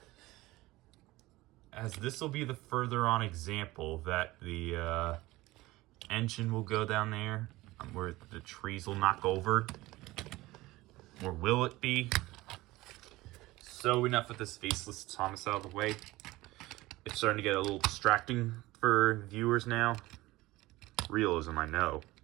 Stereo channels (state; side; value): quieter; left; 19.0 dB